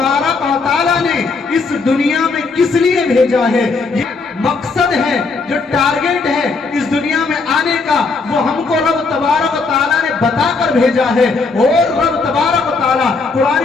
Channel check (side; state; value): right; quieter; 4.2 dB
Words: و تعالیٰ نے اس دنیا میں کس لیے بھیجا ہے، یہ مقصد ہے، جو ٹارگٹ ہے اس دنیا میں آنے کا، وہ ہم کو رب تبارک و تعالیٰ نے بتا کر بھیجا ہے۔ اور رب تبارک و تعالیٰ قرآن